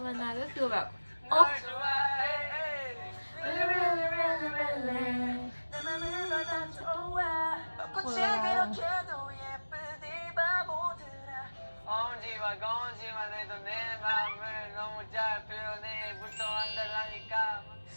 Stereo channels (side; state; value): both; inverted; correlation -1.00